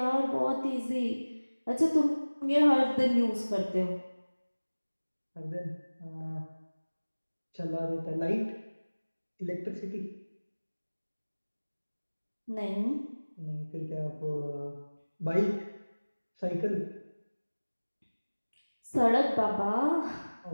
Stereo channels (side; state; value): both; inverted; correlation -1.00